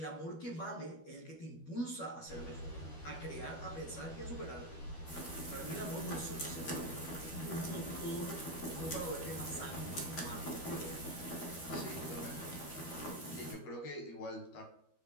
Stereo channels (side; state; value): right; late; 12 ms